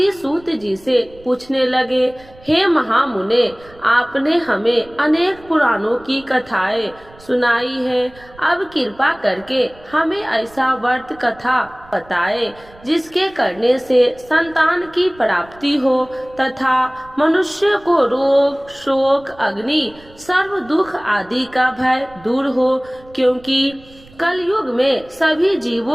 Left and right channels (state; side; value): noise; right; rumble, 24 dB below the sound